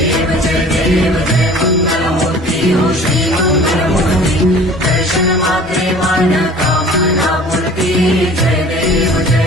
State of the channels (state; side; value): normal; both; correlation 0.46